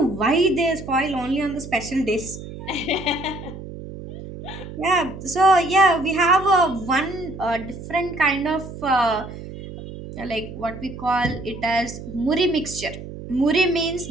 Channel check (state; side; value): noise; right; hum, 12 dB below the sound